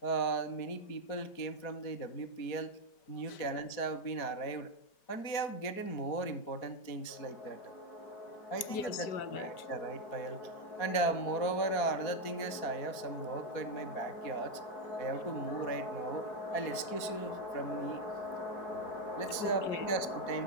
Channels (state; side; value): late; right; 4.2 ms